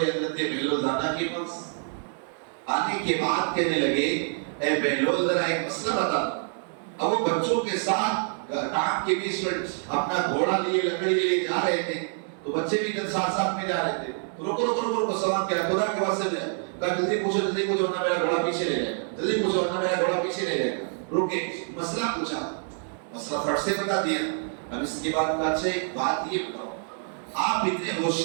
بہلول دانا کے پاس، آنے کے بعد کہنے لگے اے بہلول ذرا ایک مسئلہ بتا دو۔ اب وہ بچوں کے ساتھ ٹانگ کے بیچ میں اپنا گھوڑا لیے لکڑی لیے جا رہے تھے، تو بچے بھی ساتھ میں جا رہے تھے، تو رکو سلام کیا، خدا کے واسطے میں کہا جلدی پوچھو ورنہ میرا گھوڑا پیچھے لے جائے گا، جلدی پوچھو ورنہ میرا گھوڑا پیچھے لے جائے گا۔ رکے، مسئلہ پوچھا، مسئلہ فٹ سے بتا دیا۔ اب اس کے بعد کہا اچھا ایک بات یہ بتاؤ، آپ اتنے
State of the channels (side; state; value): left; silent; 59 dB below the other